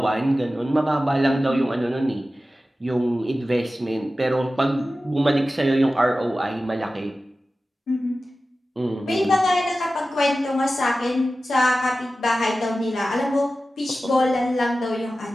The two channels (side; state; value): both; normal; correlation 0.95